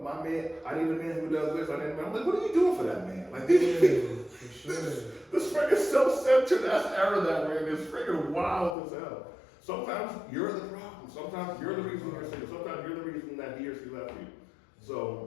my man, I need a man who does this, I need a man. I'm like, what are you doing for that man? Like, For sure. this freaking self-centered ass era that we're in is freaking wild as hell. Sometimes you're the problem. Sometimes you're the reason you're single. Sometimes you're the reason that he or she left you.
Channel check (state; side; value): drops out; right; at 8.8 s